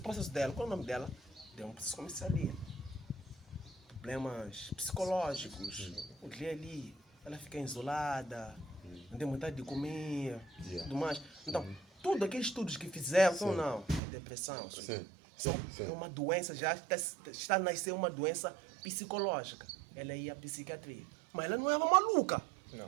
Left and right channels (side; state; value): left; drops out; at 14.0 s